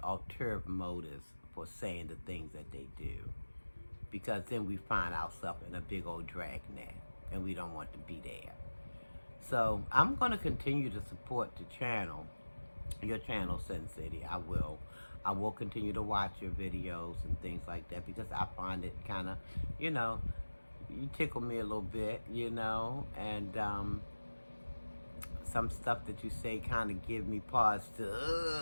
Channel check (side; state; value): both; inverted; correlation -1.00